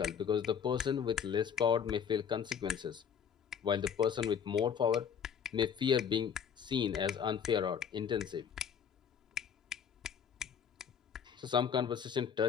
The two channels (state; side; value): quieter; right; 7.6 dB